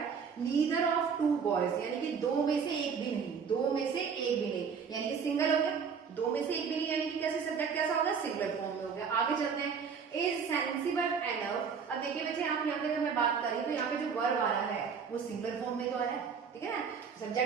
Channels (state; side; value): quieter; left; 6.2 dB